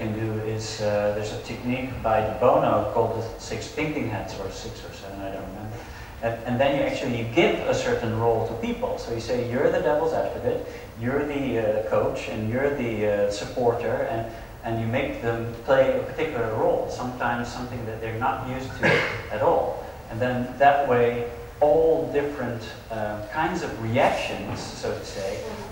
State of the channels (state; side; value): identical; both; correlation 1.00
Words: do is, there's a technique by De Bono called the 6 thinking hats, or 6 or 7, I don't remember. And then you give a certain role to people. So you say, you're the devil's advocate, you're the coach, and you're the supporter, and you make them play a particular role, sometimes something that they're not used to at all. And then that way, all different kinds of reactions, so to say,